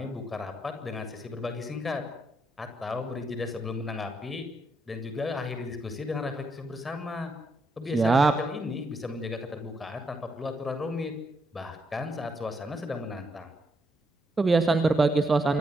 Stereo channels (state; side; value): normal; both; correlation 0.79